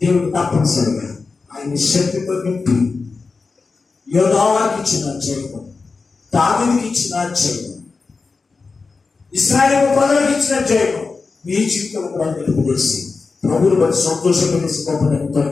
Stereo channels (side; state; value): right; quieter; 4.3 dB